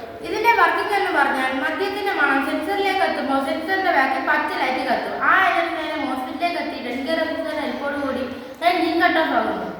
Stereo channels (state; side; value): identical; both; correlation 1.00